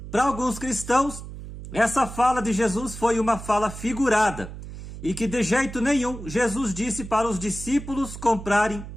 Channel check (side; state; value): right; noise; hum, 11 dB below the sound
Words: Para alguns cristãos, essa fala de Jesus foi uma fala figurada e que de jeito nenhum Jesus disse para os discípulos comprarem